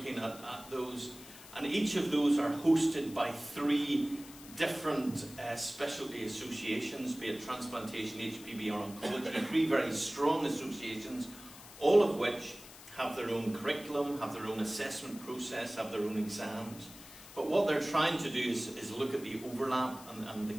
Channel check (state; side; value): noise; left; hiss, 17 dB below the sound